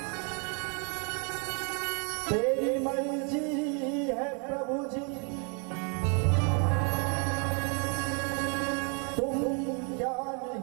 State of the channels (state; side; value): quieter; left; 37.1 dB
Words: तेरी मर्जी है प्रभु जी, तुम क्या